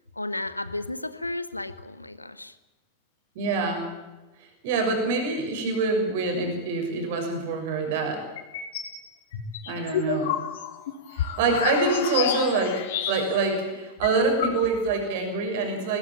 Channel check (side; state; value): both; normal; correlation -0.11